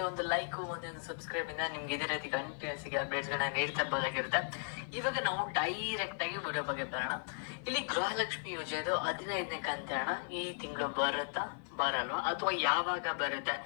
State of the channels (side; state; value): right; silent; 54 dB below the other